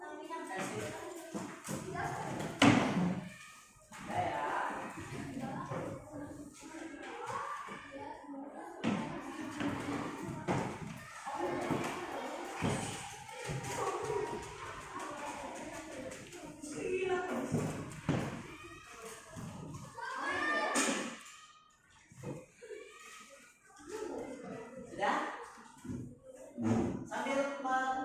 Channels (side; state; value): both; identical; correlation 1.00